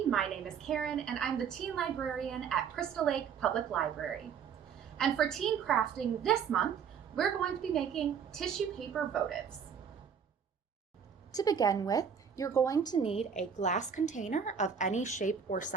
My name is Karin, and I'm the teen librarian at Crystal Lake Public Library. And for teen crafting this month, we're going to be making tissue paper votives. To begin with, you're going to need a glass container of any shape or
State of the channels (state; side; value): quieter; left; 7.1 dB